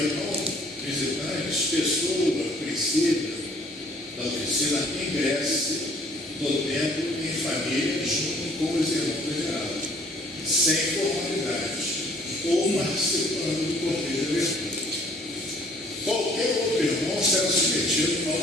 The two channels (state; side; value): normal; both; correlation 0.58